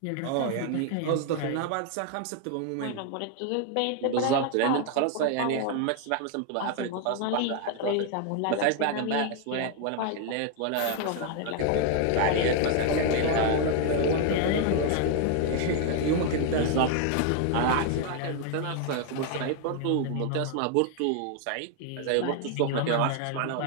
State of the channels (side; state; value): both; different; correlation 0.00